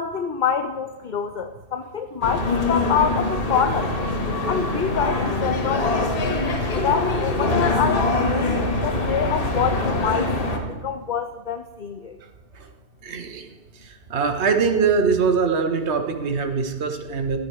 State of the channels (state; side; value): late; left; 2.7 ms